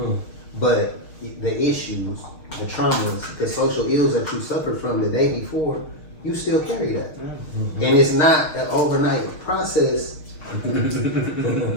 but the issues, the traumas, the social ills that you suffered from the day before, you still carry that. And it's not an overnight process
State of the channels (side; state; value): right; late; 6.5 ms